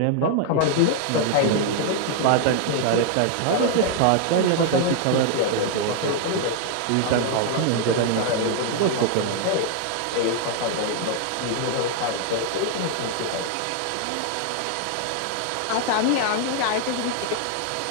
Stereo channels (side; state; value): both; different; correlation 0.00